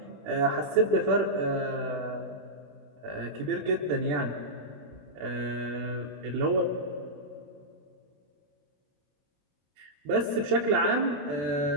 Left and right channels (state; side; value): late; left; 20 ms